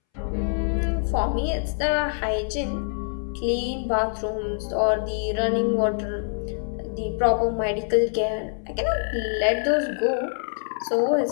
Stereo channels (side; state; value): right; silent; 62 dB below the other